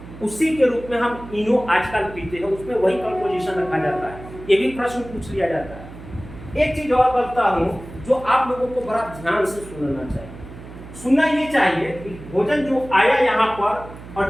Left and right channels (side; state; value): right; noise; hum, 15 dB below the sound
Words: उसी के रूप में हम इनो आजकल पीते हैं, उसमें वही कंपोजिशन रखा जाता है। ये भी प्रश्न पूछ लिया जाता है। एक चीज और बोलता हूँ जो आप लोगों को बड़ा ध्यान से सुनना चाहिए। सुनना ये चाहिए कि भोजन जो आया यहाँ पर